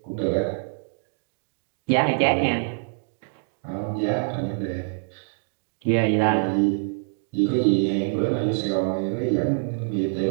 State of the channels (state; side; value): silent; left; digital silence